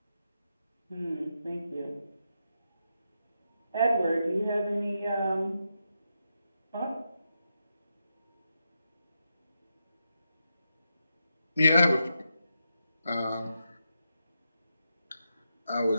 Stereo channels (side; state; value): both; inverted; correlation -0.85